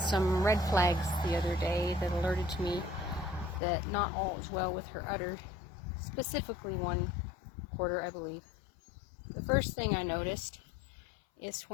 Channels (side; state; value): right; drops out; at 3.6 s